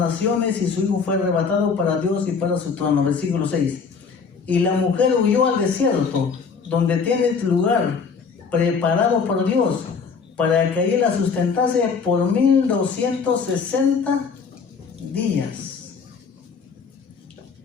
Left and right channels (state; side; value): quieter; right; 5.5 dB